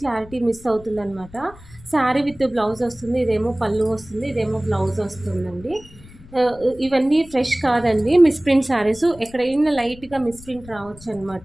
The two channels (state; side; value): noise; left; rumble, 21 dB below the sound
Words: క్లారిటీ మిస్ అవుతుందన్నమాట. శారీ విత్ బ్లౌజ్ వస్తుంది, ఇదేమో పళ్ళు వస్తుంది, ఇదేమో బ్లౌజ్ వస్తుందండి. ఇవన్నీ ఫ్రెష్ కాదండి, మిస్ప్రింట్ శారీస్. ఎక్కడైనా లైట్గా మిస్ప్రింట్ రావచ్చు